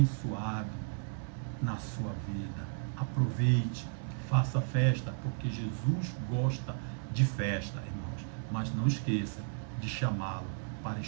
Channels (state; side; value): silent; left; digital silence